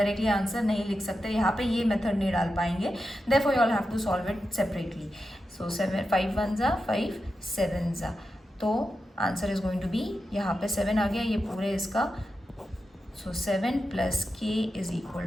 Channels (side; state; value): both; normal; correlation 0.90